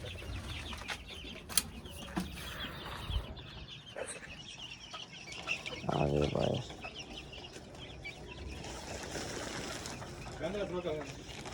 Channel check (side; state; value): both; identical; correlation 1.00